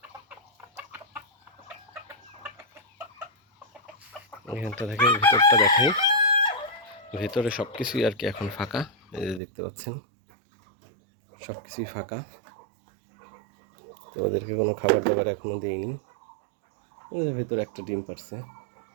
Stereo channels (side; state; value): left; drops out; at 9.4 s